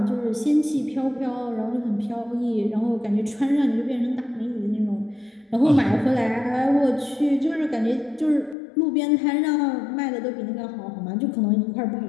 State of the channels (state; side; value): drops out; right; at 8.6 s